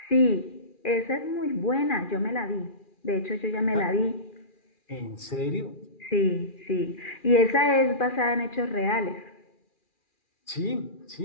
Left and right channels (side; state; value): right; late; 2.4 ms